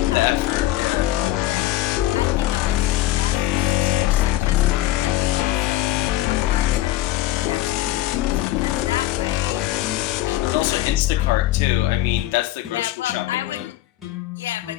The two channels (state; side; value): quieter; right; 15.4 dB